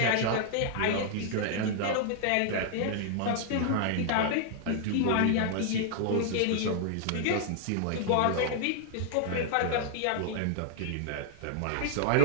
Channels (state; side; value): different; both; correlation -0.01